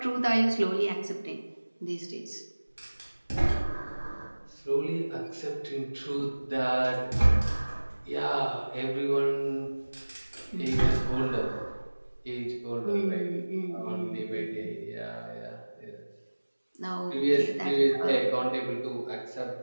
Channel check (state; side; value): inverted; both; correlation -1.00